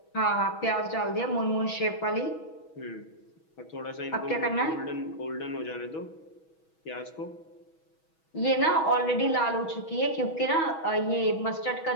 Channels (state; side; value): late; right; 6.2 ms